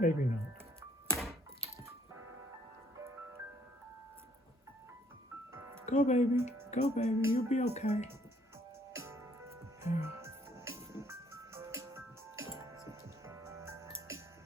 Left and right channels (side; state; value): both; normal; correlation 0.64